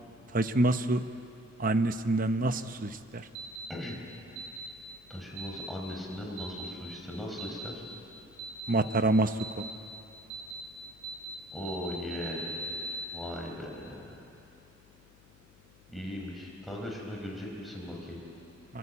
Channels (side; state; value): left; noise; hum, 25 dB below the sound